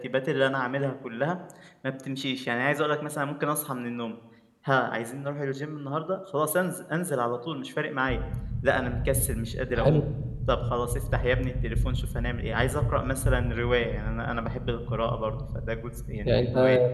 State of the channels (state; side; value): identical; both; correlation 1.00